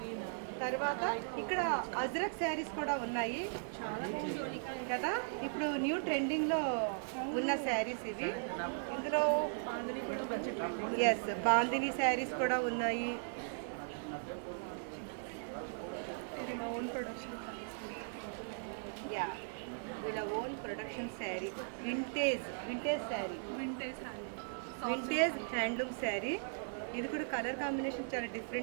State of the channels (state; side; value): silent; left; 52 dB below the other